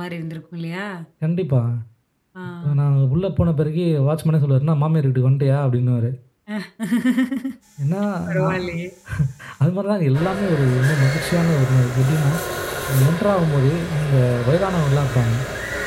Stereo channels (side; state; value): both; identical; correlation 1.00